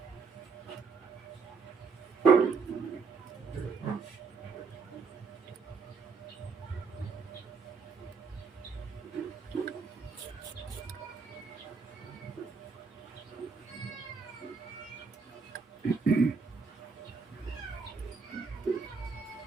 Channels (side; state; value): left; quieter; 4.9 dB